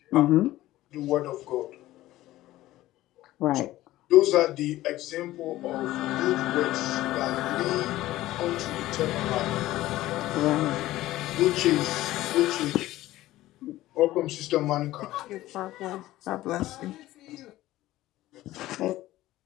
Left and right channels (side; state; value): right; quieter; 15.9 dB